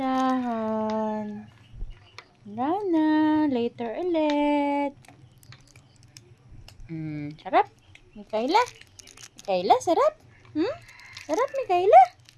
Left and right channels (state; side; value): identical; both; correlation 1.00